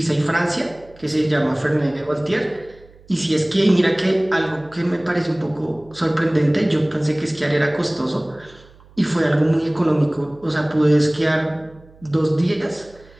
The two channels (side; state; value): right; noise; hum, 26 dB below the sound